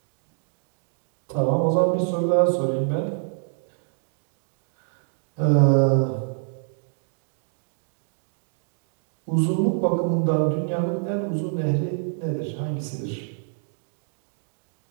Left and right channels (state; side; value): silent; left; digital silence